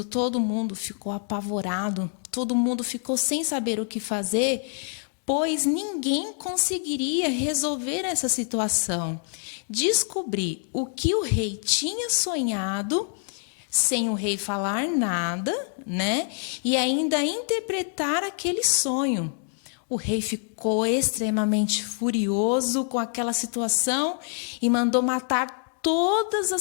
todo mundo ficou apavorado, todo mundo ficou sem saber o que fazer, pois ninguém conseguiria resolver essa situação. Descobrir o que o rei tinha sonhado, sem o rei falar nada, né? E ainda interpretar aquele sonho. O rei ficou extremamente furioso com aquela situação e mandou matar todas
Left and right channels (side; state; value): right; silent; 56 dB below the other